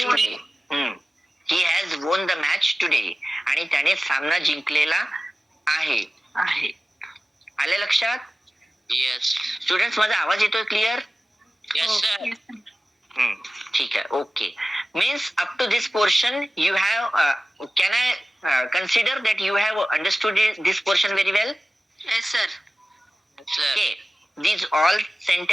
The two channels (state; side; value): normal; both; correlation 0.96